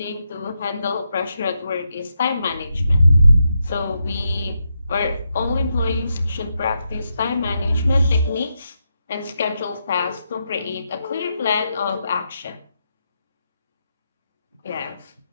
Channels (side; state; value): both; inverted; correlation -0.83